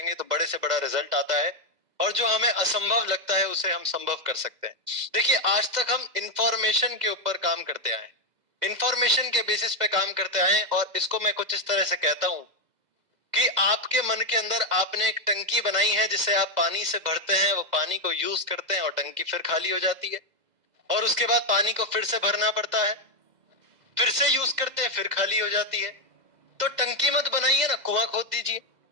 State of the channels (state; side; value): late; left; 2.0 ms